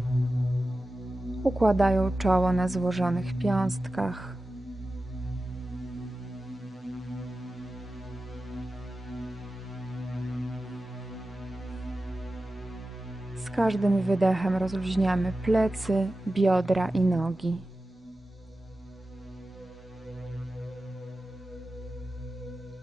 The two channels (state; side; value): normal; both; correlation 0.94